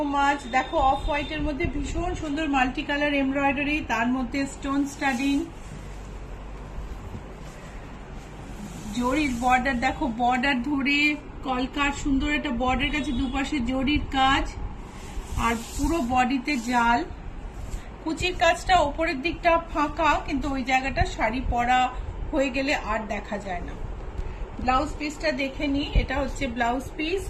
much. দেখো অফ হোয়াইটের মধ্যে ভীষণ সুন্দর মাল্টি কালার এমব্রয়ডারি, তার মধ্যে স্টোন স্টাডিং, জরির বর্ডার। দেখো বর্ডার ধরে কলকার সুন্দর একটা বর্ডার কাছে দুপাশে জরির কাজ, আর পুরো বডিতে জাল। কুচির কাজটা ওপরের দিকটা ফাঁকা, কিন্তু ওই জায়গাটা শাড়ি পরা হয়ে গেলে আর দেখা যায় না। ব্লাউজ পিসটা দেখে নি, এটা হচ্ছে ব্লাউজ পিস।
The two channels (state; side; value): identical; both; correlation 1.00